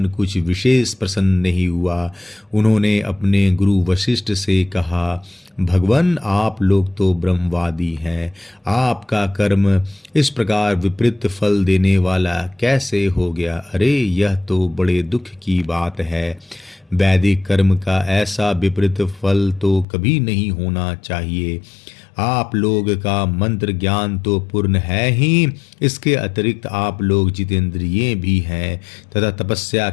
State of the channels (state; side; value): drops out; right; at 19.9 s